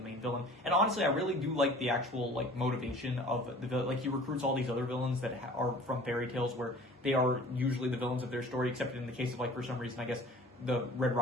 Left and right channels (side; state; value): both; normal; correlation 0.47